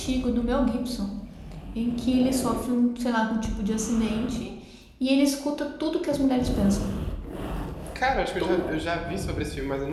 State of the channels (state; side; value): identical; both; correlation 1.00